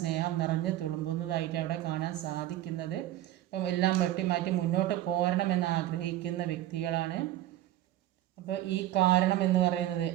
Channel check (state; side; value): quieter; left; 14.0 dB